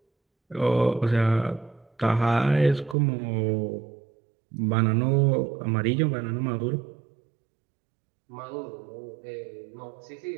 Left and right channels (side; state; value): left; drops out; at 3.0 s